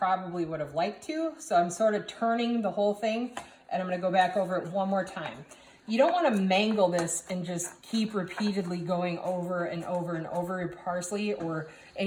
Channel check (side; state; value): both; identical; correlation 1.00